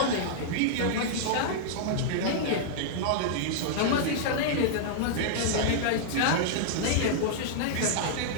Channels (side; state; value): both; different; correlation -0.01